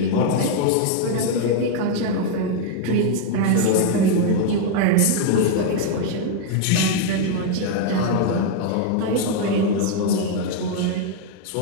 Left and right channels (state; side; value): different; both; correlation 0.00